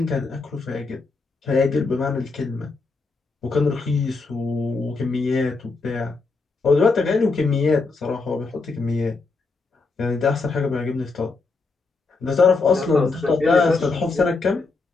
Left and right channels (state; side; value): quieter; right; 4.0 dB